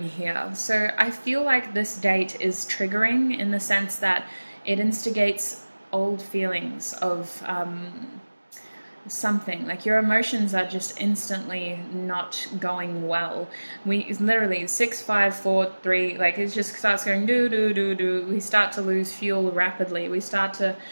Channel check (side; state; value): both; inverted; correlation -1.00